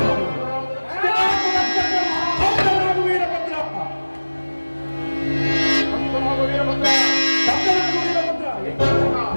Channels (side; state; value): both; inverted; correlation -1.00